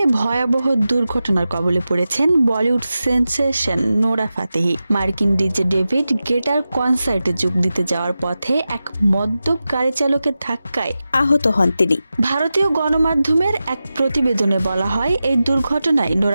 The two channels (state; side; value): inverted; both; correlation -0.93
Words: ভয়াবহ দুর্ঘটনার কবলে পড়েছেন বলিউড সেন্সেশন নোরা ফাতেহি। মার্কিন ডিজে ডেভিড গেটার কনসার্টে যোগ দিতে যাওয়ার পথে এক মদ্যপ গাড়ি চালকের ধাক্কায় আহত হন তিনি। ভারতীয় গণমাধ্যমের এক প্রতিবেদনে বলা হয়, এই দুর্ঘটনায়